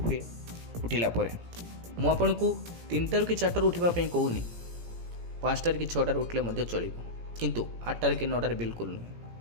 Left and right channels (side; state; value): left; late; 17 ms